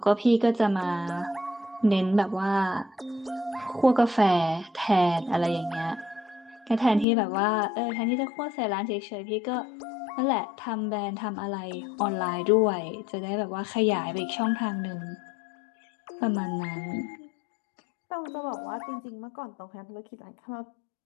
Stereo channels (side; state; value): right; drops out; at 7.1 s